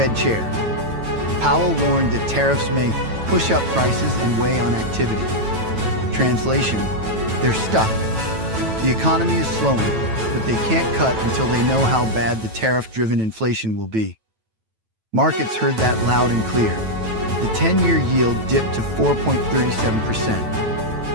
Chair Powell warned that tariffs may push up prices and weigh on activity. Translation, they're stuck. The economy is slowing, but they can't cut until they know how bad the tariff-driven inflation will be. Markets heard that loud and clear. The 10-year yield dipped to 4.37%.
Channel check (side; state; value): left; late; 9.1 ms